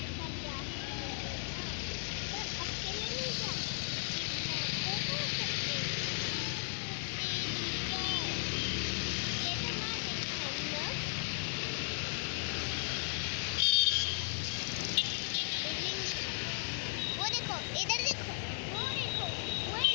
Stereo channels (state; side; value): silent; right; 54 dB below the other